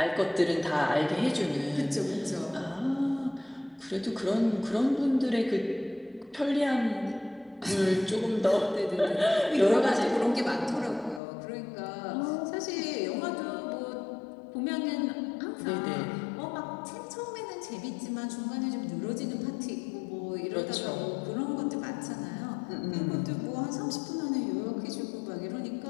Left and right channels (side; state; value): right; drops out; at 11.2 s